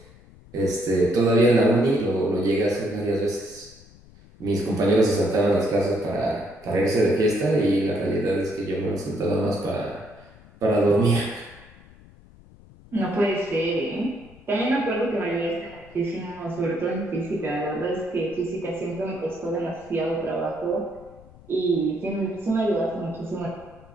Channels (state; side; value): noise; left; rumble, 23 dB below the sound